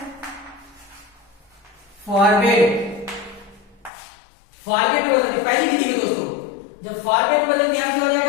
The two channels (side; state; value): right; drops out; at 3.9 s